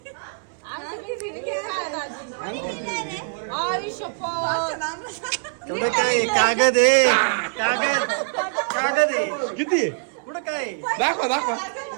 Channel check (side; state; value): left; silent; 62 dB below the other